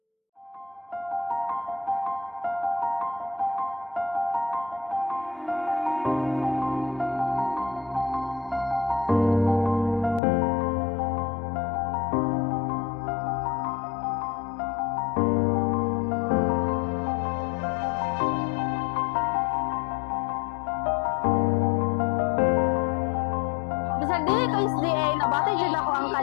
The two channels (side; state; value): right; drops out; at 10.2 s